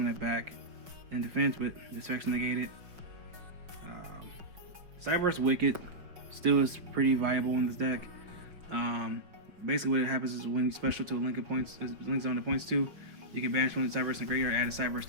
it back in defense, but this effect's negated. Cyberse Wicked still is pretty viable in this deck. Basically what happens is when you special to a link zone to points 2, you can banish 1 Cyberse and graveyard, add a Cyberse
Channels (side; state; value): left; late; 5.1 ms